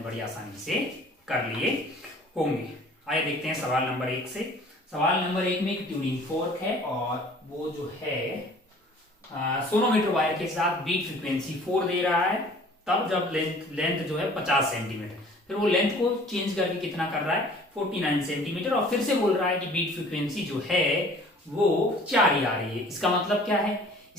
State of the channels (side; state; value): both; normal; correlation 0.50